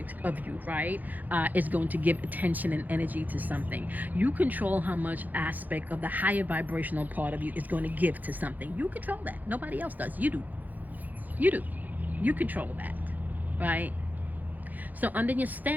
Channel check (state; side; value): late; left; 0.082 ms